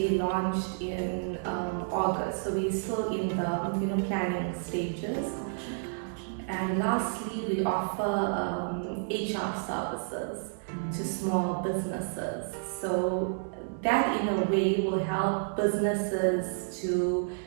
launched in August. So we're still in the planning stages. And lastly, we offer HR services to small businesses. So that in a way will help businesses to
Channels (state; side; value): silent; left; digital silence